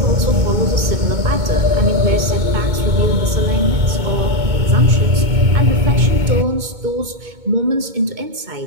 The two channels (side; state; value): left; late; 2.2 ms